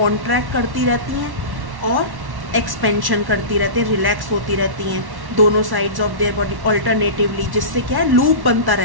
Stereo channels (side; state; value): left; late; 1.1 ms